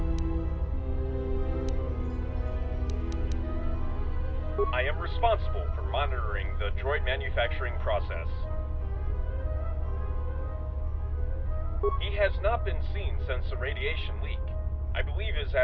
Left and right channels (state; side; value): identical; both; correlation 1.00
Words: I am responsible for monitoring the droid manufacturing process. He has not been seen since the radiation leak. I believe his